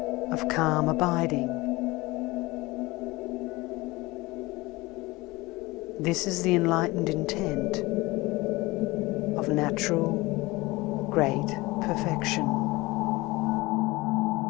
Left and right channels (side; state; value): right; quieter; 21.5 dB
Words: of calm abiding. This is the enlightened intent of natural, great perfection.